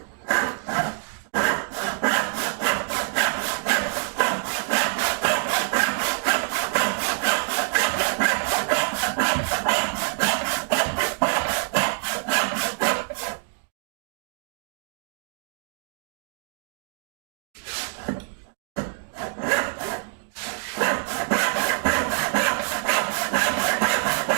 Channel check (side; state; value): left; silent; digital silence